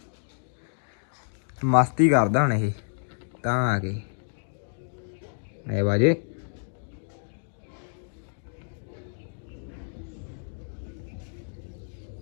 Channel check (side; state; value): right; silent; digital silence